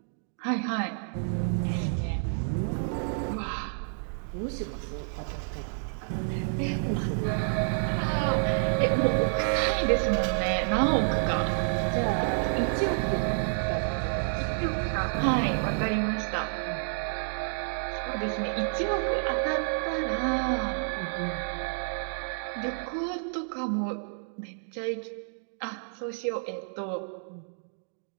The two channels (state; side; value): silent; left; digital silence